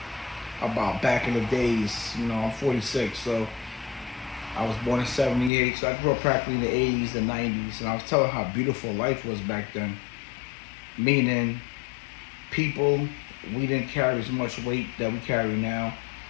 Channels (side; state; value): right; drops out; at 5.5 s